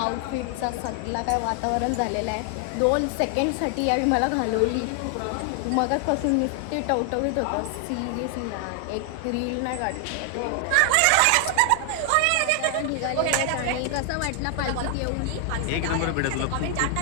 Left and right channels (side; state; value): both; different; correlation 0.00